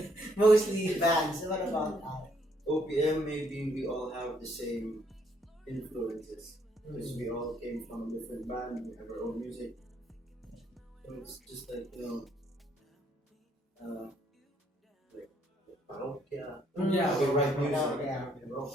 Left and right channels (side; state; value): both; normal; correlation 0.69